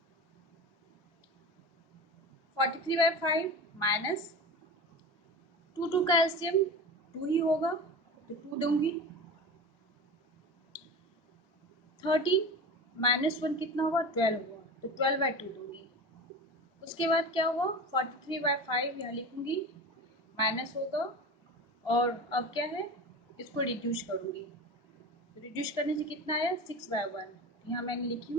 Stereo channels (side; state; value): both; normal; correlation 0.30